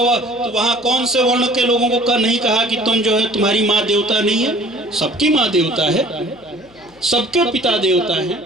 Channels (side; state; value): left; noise; hum, 28 dB below the sound